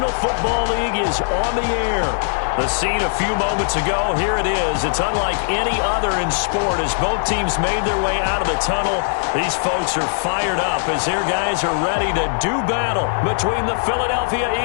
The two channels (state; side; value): silent; right; digital silence